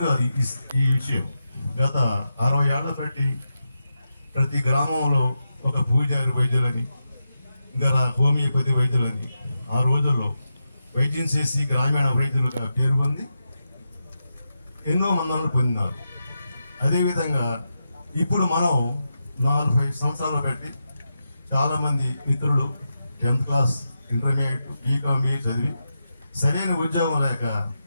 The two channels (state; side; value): inverted; both; correlation -0.88